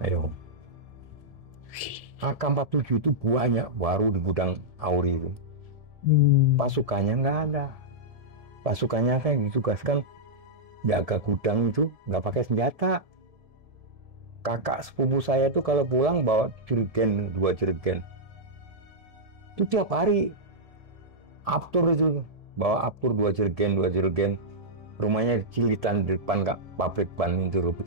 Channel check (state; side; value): late; left; 1.7 ms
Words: AK-47 itu banyak baru di gudang AURI itu. Pasukannya nggak ada. Pasukannya kan ditugaskan jaga gudang itu nggak pakai senjata. Kakak sepupu saya itu kalau pulang bawa jerigen, 2 jerigen. Itu tiap hari. Aptur itu bawa Aptur 2 jerigen. Rumahnya Cilitan di depan pabrik ban itu